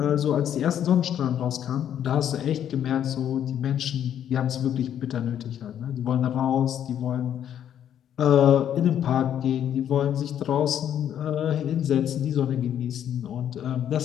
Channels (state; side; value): quieter; right; 9.9 dB